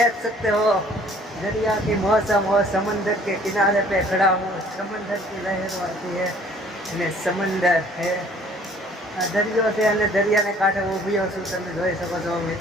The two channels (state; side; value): normal; both; correlation 0.56